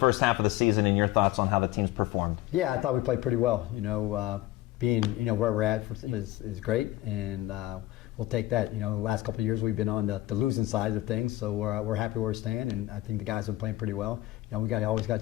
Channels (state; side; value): quieter; right; 16.4 dB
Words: half of the season and your thoughts on how the team's performed. Yeah, I thought we played pretty well. Being where we're at is great, and we'll take that. The last couple of years we've been on the losing side of things, so we're happy where we stand, and I think the guys have been playing pretty well. We always got